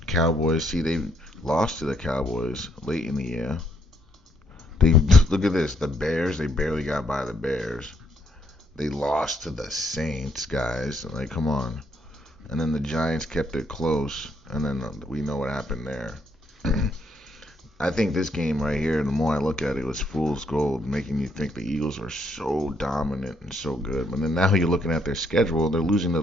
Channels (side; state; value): both; normal; correlation 0.72